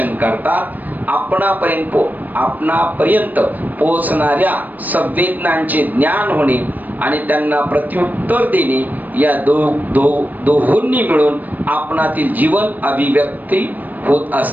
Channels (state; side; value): late; left; 0.083 ms